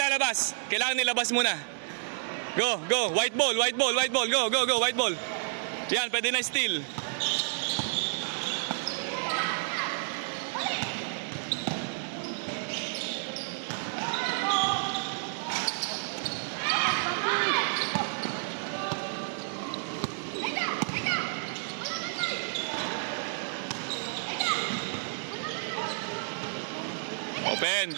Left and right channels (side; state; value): left; silent; digital silence